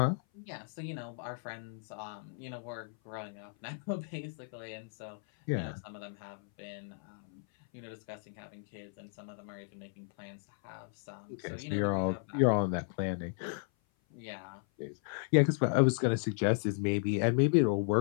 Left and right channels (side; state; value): right; silent; 55 dB below the other